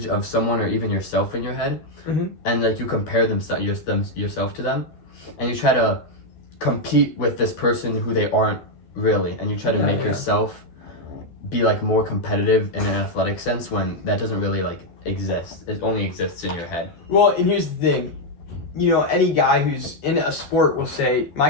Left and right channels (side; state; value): right; late; 12 ms